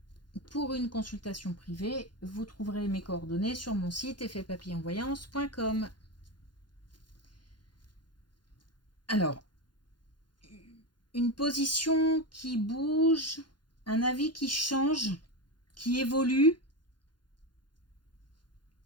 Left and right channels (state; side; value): late; right; 0.71 ms